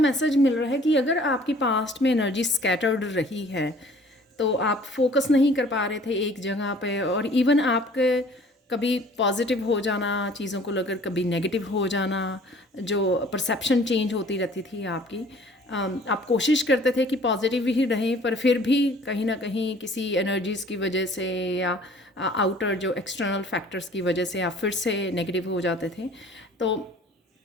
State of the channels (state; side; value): normal; both; correlation 0.52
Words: मिल रहा है कि अगर आपकी पास्ट में एनर्जी स्कैटर्ड रही है तो आप फोकस नहीं कर पा रहे थे एक जगह पे, और इवन आपके कभी पॉजिटिव हो जाना चीज़ों को लेकर, कभी नेगेटिव हो जाना, जो परसेप्शन चेंज होती रहती थी आपकी। आप कोशिश करते थे कि पॉजिटिव ही रहें, पर फिर भी कहीं ना कहीं किसी एनर्जीज़ की वजह से या आउटर जो एक्सटर्नल फैक्टर्स की वजह से आप फिर से नेगेटिव हो जाते थे। तो